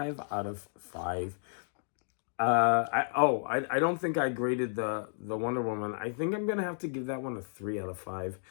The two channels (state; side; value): silent; right; digital silence